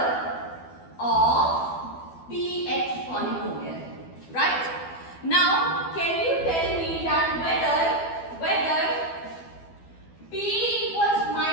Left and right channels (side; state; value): right; late; 12 ms